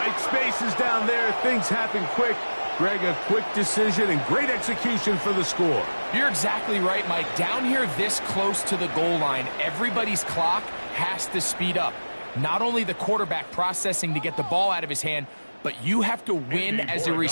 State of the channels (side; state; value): both; inverted; correlation -1.00